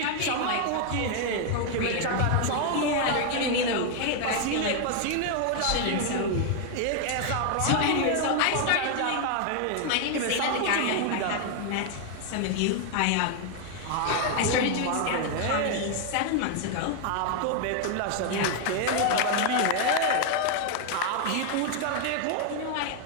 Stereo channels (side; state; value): both; different; correlation 0.00